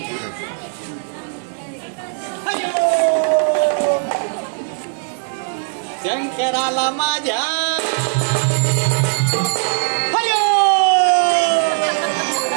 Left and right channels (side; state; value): left; silent; digital silence